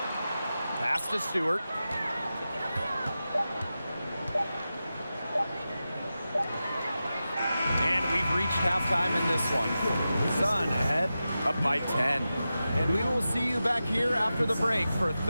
Pass to Stewart. And we've reached halftime in this one. Sun ahead, up by 10. And we will see you back here after the break for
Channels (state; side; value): inverted; both; correlation -0.93